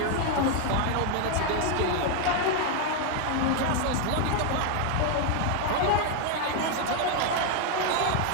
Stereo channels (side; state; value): both; different; correlation 0.01